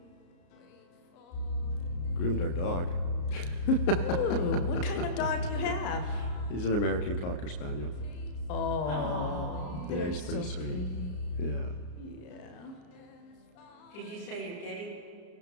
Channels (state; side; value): late; right; 34 ms